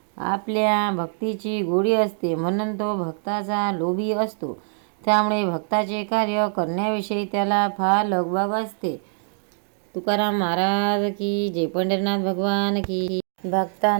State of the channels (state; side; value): silent; left; digital silence